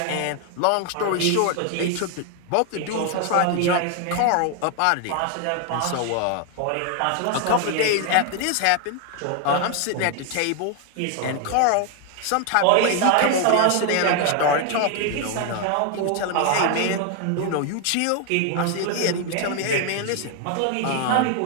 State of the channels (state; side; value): different; both; correlation 0.00